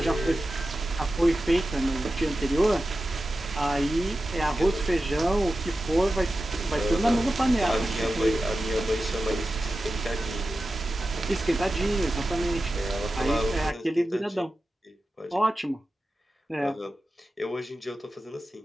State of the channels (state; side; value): normal; both; correlation 0.93